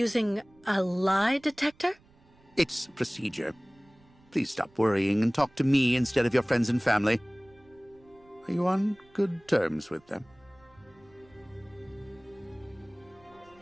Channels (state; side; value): noise; right; rumble, 30 dB below the sound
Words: a lie detector? It's procedure. Please stop worrying and talk to me instead of your friends and family. Are you on good terms with them?